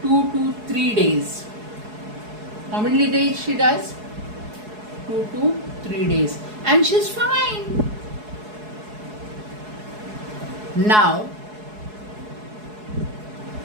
2 to 3 days. How many days she does? 2 to 3 days, and she's fine. Now,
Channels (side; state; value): left; late; 4.7 ms